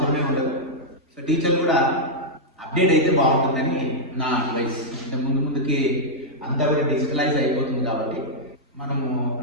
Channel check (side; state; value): both; normal; correlation -0.06